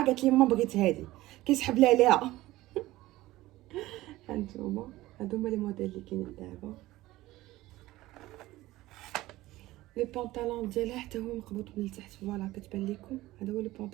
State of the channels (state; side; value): quieter; left; 17.4 dB